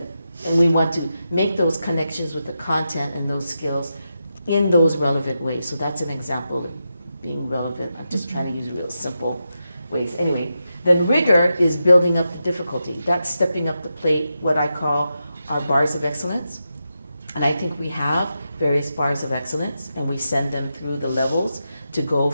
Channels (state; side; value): inverted; both; correlation -0.88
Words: and we want to make those connections with the content and those skills in those relevant ways. So that's an example of being relevant. I'm just trying to use real simple ways. Anyway, then rigor is building up the difficulty. That's stepping up the plate, what I call our bars of excellence. And I think we have various bars of excellence, and we send them through the levels to go